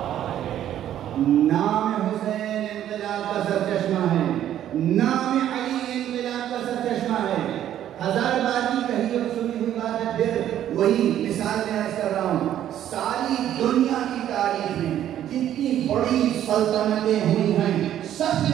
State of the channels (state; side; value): quieter; left; 11.3 dB